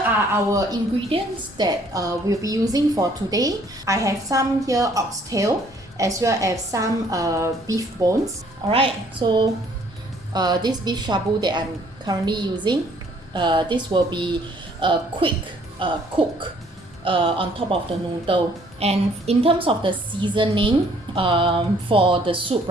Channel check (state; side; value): normal; both; correlation 0.61